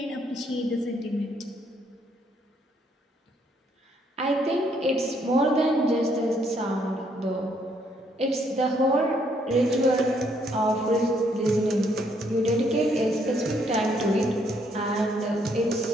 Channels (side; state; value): both; normal; correlation 0.70